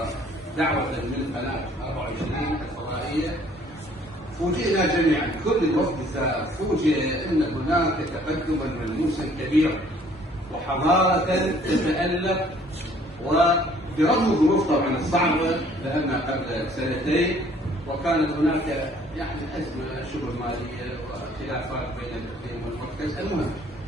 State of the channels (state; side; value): normal; both; correlation 0.58